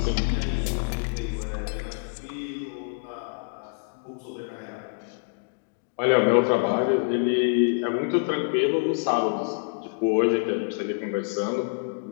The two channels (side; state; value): right; silent; digital silence